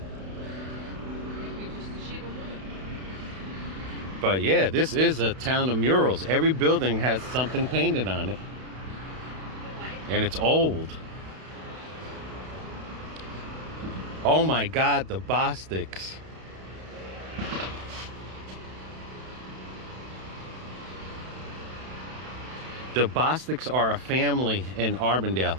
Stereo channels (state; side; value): late; left; 32 ms